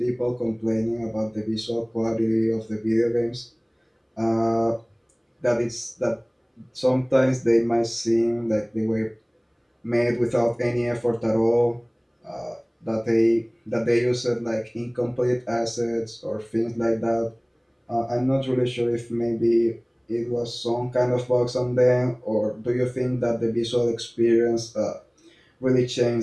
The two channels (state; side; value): identical; both; correlation 1.00